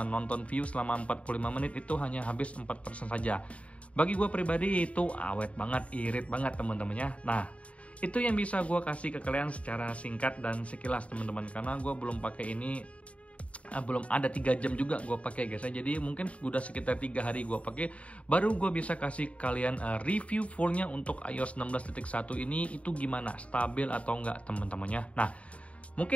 nonton view selama 45 menit, itu hanya habis 4% saja. Bagi gue pribadi itu awet banget, irit banget teman-temannya. Nah itu yang bisa gue kasih ke kalian secara singkat dan sekilas teman-teman, karena gue belum pakai ini, belum ada 3 jam juga gue pakai guys ya. Jadi mungkin udah sekitar 3 hari gue pakai, baru gue bisa kasih kalian review fullnya untuk iOS 16.1 ini itu gimana, stabil atau enggak teman-temannya. Nah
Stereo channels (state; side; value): late; right; 0.064 ms